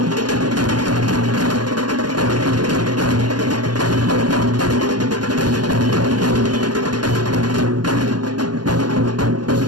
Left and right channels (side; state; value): left; late; 0.70 ms